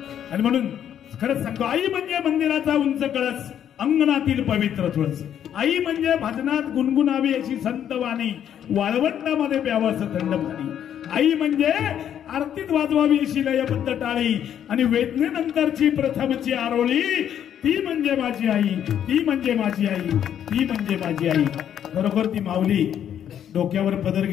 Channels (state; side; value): quieter; right; 9.7 dB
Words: आणि म्हणून खरंच सांगतो, आई म्हणजे मंदिराचा उंच कळस, अंगणातील पवित्र तुळस. आई म्हणजे भजनात गुणगुणावी अशी संत वाणी, वाळवंटामध्ये प्यावं असं थंड पाणी. आई म्हणजे आरतीत वाजवावी अशी लयबद्ध टाळी आणि वेदनेनंतरची प्रथमची आरोळी. ती म्हणजे माझी आई, ती म्हणजे माझी आई, ती म्हणजे माझी आई. खरोखर ती माऊली डोक्यावर पदर